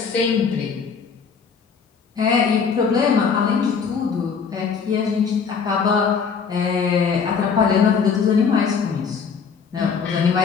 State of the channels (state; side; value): quieter; right; 6.0 dB